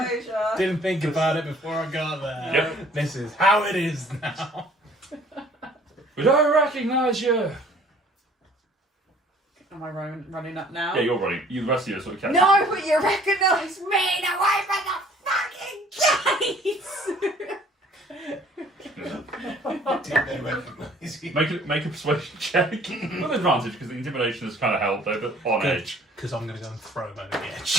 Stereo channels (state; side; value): normal; both; correlation 0.55